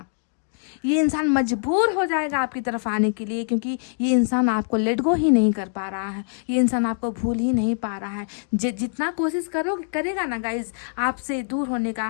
ये इंसान मजबूर हो जाएगा आपकी तरफ आने के लिए, क्योंकि ये इंसान आपको लेट गो ही नहीं कर पा रहा है, ये इंसान आपको भूल ही नहीं पा रहा है। जितना कोशिश करेगा ना गाइज आपसे दूर होने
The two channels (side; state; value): right; silent; digital silence